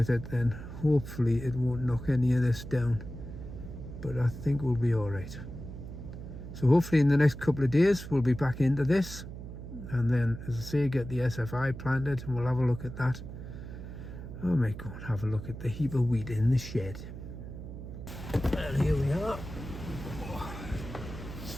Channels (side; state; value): right; noise; hum, 10 dB below the sound